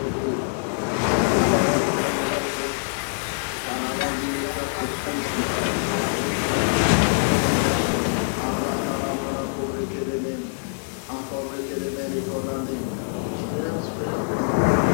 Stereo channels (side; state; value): right; silent; 62 dB below the other